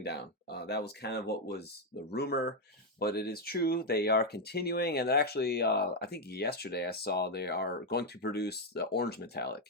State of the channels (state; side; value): normal; both; correlation 0.02